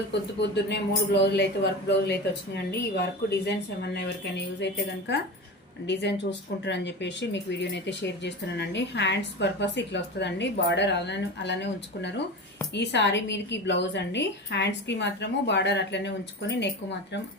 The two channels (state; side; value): normal; both; correlation 0.27